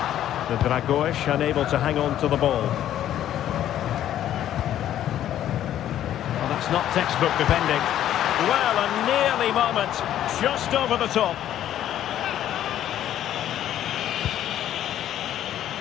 The Dragoish unable to hang on to the ball. It's not textbook defending. Well, a nearly moment, just over the top.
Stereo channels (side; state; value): right; quieter; 11.6 dB